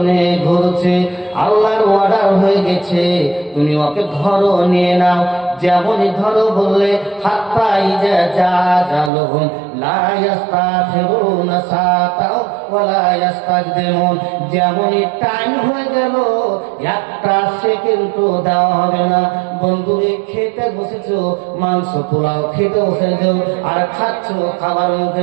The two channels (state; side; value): drops out; left; at 9.1 s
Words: ঘুরছে, আল্লাহর অর্ডার হয়ে গেছে তুমি ওকে ধরো, নিয়ে নাও। যেমনই ধরো বললে হাত্তা ইজা জাজালুহুম লা ইস্তাখিরুনা সাতাও ওয়া লা ইস্তাকদিমুন, যেমনই টাইম হয়ে গেল একটা সেকেন্ডও দেওয়া হবে না। বন্ধুরে খেতে বসেছো, মাংস পোলাও খেতে বসেছো আর খাচ্ছো, খাবার মুখে